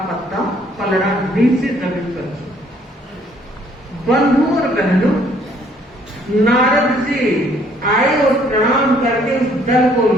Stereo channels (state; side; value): normal; both; correlation 0.63